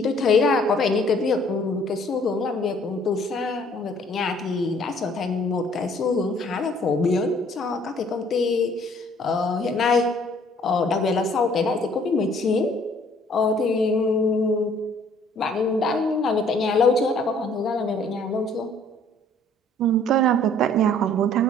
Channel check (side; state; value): both; normal; correlation 0.58